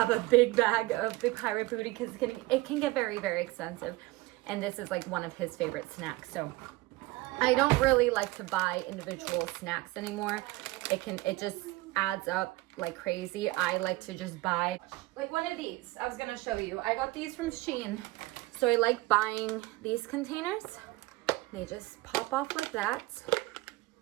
a big bag of the Pirate Booty because it can get very, very expensive. And this is one of his favorite snacks. So I don't really like to buy individual snacks anymore. It just adds up like crazy. I like to just buy one of these. I was gonna show you. I got these from Shein. So I like buying these containers. They just pop off like that.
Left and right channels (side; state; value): left; quieter; 20.0 dB